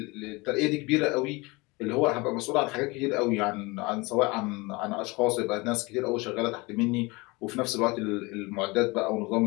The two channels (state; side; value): quieter; right; 24.8 dB